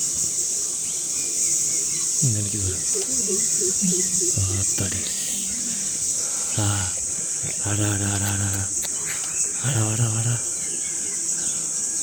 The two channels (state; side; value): identical; both; correlation 1.00